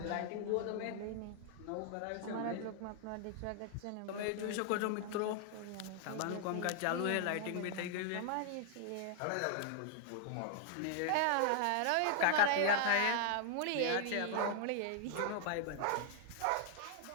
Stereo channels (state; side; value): different; both; correlation -0.01